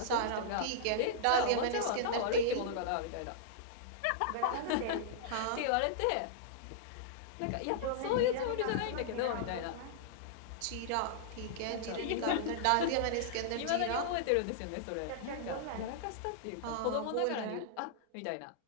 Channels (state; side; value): different; both; correlation -0.02